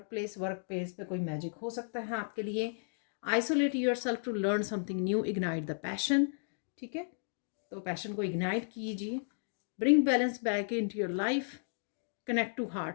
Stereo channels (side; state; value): right; silent; digital silence